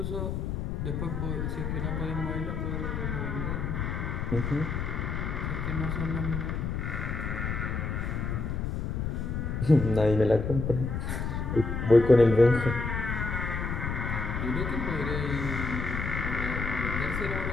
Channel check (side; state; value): left; noise; rumble, 2 dB below the sound